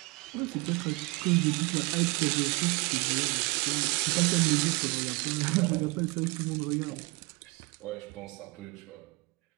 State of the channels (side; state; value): left; quieter; 26.3 dB